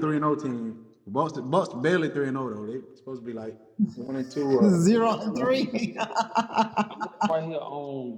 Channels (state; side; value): identical; both; correlation 1.00